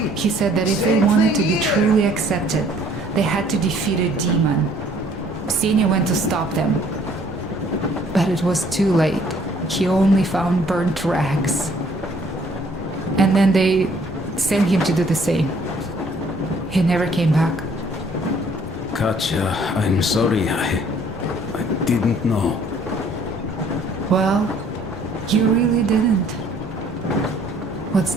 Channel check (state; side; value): normal; both; correlation 0.60